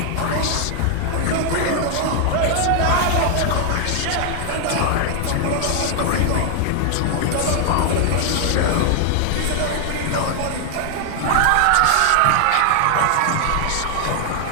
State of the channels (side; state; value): both; different; correlation 0.00